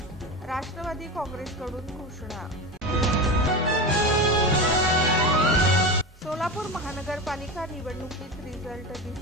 राष्ट्रवादी काँग्रेसकडून घोषणा. सोलापूर महानगरपालिका निवडणुकीत रिझल्ट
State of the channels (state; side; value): normal; both; correlation 0.24